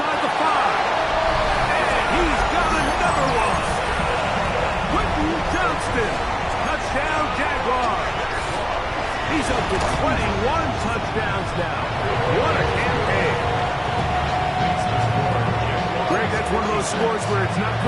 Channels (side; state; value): both; identical; correlation 1.00